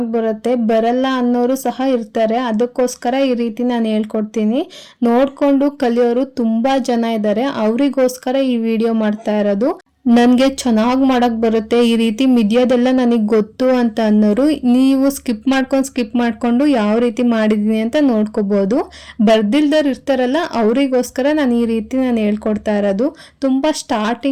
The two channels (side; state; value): both; identical; correlation 1.00